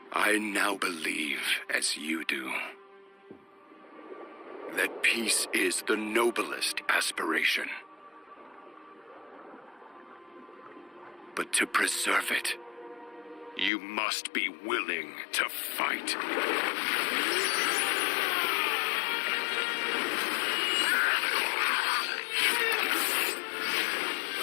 I now believe, as you do, that peace is the noblest aspiration. But to preserve it, you must be willing to fight.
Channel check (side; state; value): right; drops out; at 13.7 s